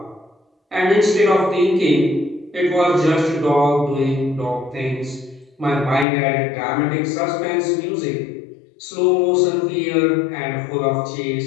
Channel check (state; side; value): drops out; right; at 6.1 s